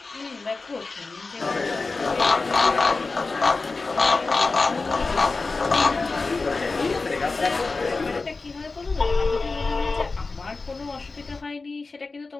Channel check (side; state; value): right; quieter; 3.8 dB